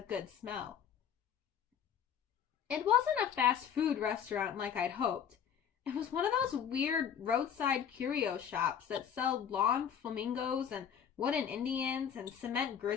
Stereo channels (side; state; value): right; quieter; 8.3 dB